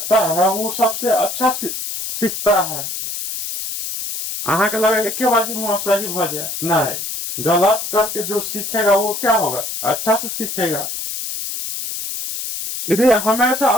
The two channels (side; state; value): left; noise; hiss, 5 dB below the sound